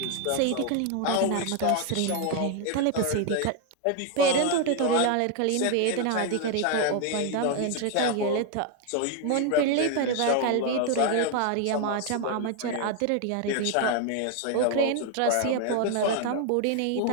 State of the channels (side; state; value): both; different; correlation 0.01